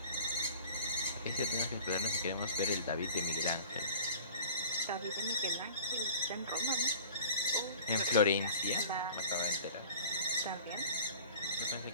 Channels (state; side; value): inverted; both; correlation -0.46